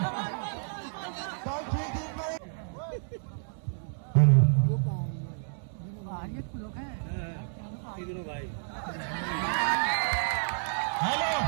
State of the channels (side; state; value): left; silent; 57 dB below the other